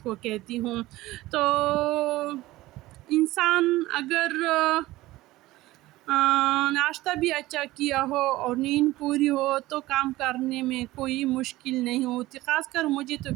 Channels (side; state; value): left; quieter; 17.7 dB